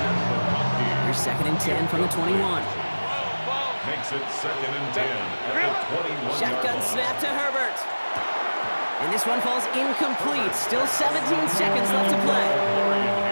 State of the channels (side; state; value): both; inverted; correlation -1.00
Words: McConkey. Here's 2nd and 10 from the 21. Makes it 2nd and 10 at the 21-yard Shotgun line. snap to Herbert. And this one falls incomplete. Still 17 seconds left to play.